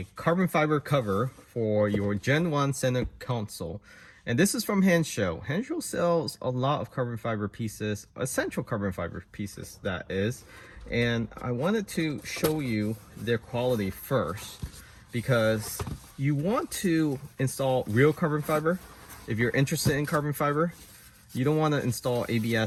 carbon fiber cover for your Gen 1 center console. And this is from Hansshow. Hansshow sells a lot of carbon fiber pieces, essential carbon fiber pieces that is. And I wanted to show you their quality first because you want to install real carbon fiber. If you're interested in carbon fiber, you don't want to install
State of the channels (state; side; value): identical; both; correlation 1.00